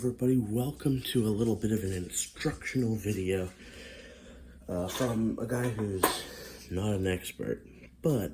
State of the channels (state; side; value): identical; both; correlation 1.00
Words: welcome to a little bit of an instructional video from a guy who's not an expert, but